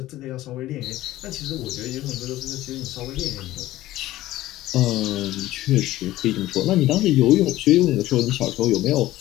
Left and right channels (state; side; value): quieter; right; 15.8 dB